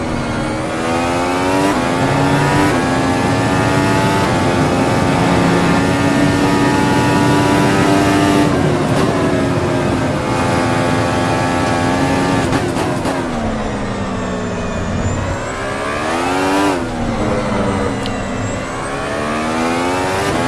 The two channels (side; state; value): both; identical; correlation 1.00